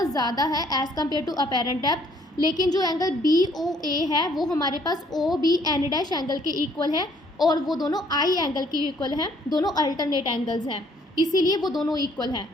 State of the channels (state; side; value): normal; both; correlation 0.63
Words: ज़्यादा है as compare to apparent depth. लेकिन जो एंगल बी ओ ए है वो हमारे पास O B N dash angle के इक्वल है, और वो दोनों आई एंगल के इक्वल हैं, दोनों अल्टरनेट एंगल्स हैं इसीलिए वो दोनों इक्वल हैं।